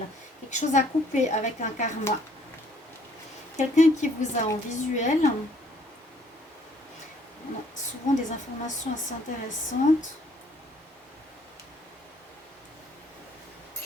Quelque chose à couper avec un karma. Quelqu'un qui vous a en visuel. On a souvent des informations assez intéressantes.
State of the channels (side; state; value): both; normal; correlation 0.62